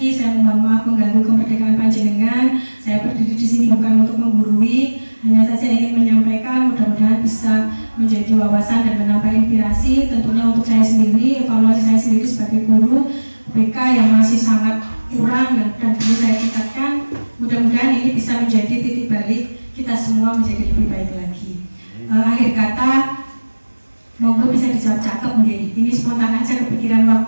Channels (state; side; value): inverted; both; correlation -1.00